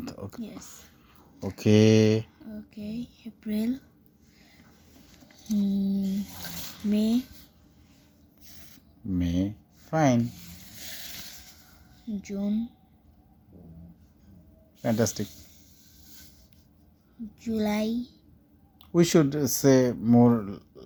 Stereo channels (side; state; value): both; identical; correlation 1.00